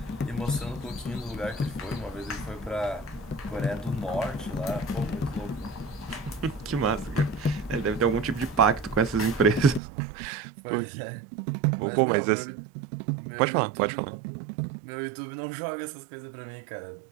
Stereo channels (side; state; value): left; drops out; at 9.8 s